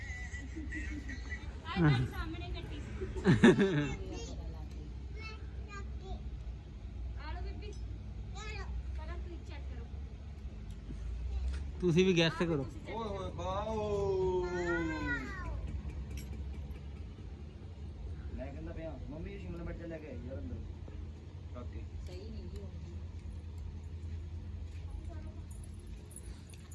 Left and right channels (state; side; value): identical; both; correlation 1.00